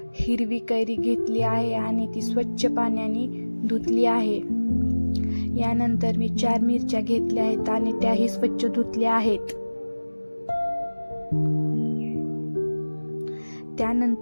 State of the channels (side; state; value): both; inverted; correlation -1.00